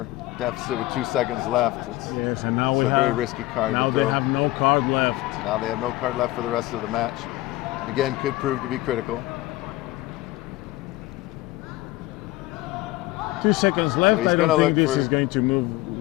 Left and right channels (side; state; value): right; quieter; 18.2 dB